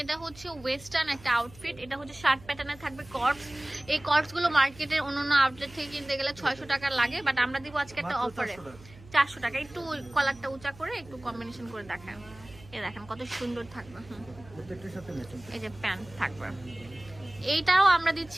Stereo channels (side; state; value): right; noise; hum, 21 dB below the sound